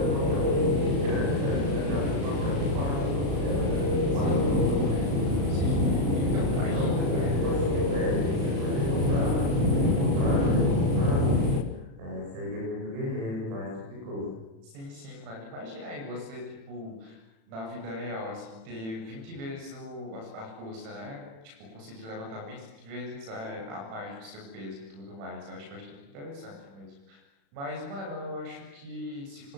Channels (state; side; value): late; left; 36 ms